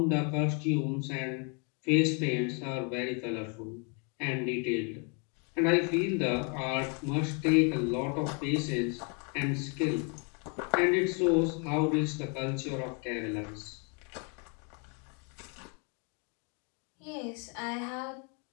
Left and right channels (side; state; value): right; quieter; 36.4 dB